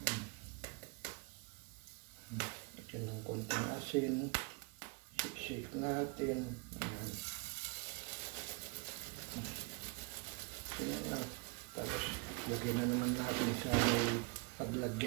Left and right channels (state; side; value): quieter; left; 30.5 dB